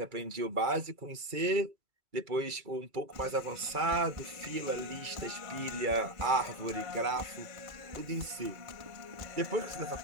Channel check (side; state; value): left; late; 2.3 ms